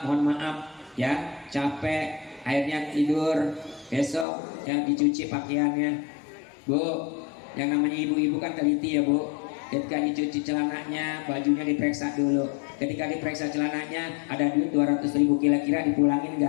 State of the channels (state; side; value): drops out; right; at 4.2 s